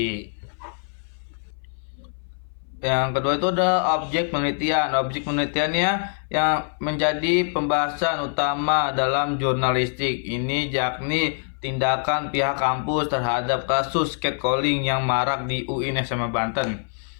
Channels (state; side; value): silent; right; 59 dB below the other